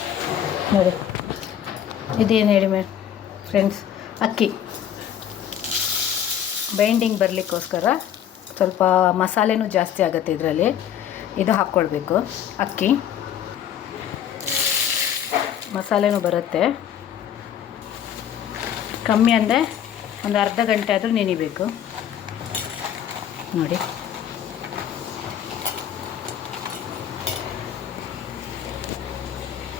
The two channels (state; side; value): quieter; right; 9.6 dB